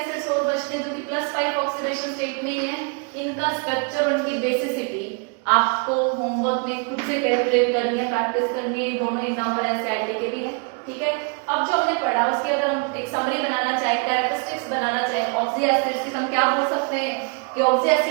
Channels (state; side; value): quieter; left; 35.3 dB